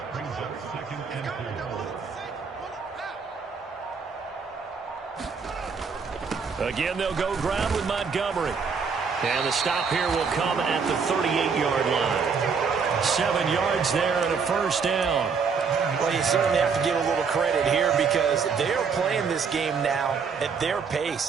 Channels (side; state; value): left; quieter; 5.6 dB